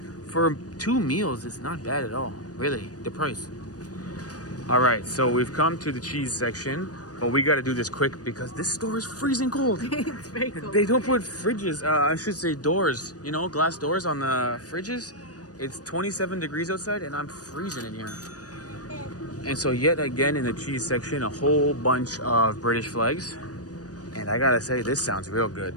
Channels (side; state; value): right; late; 0.68 ms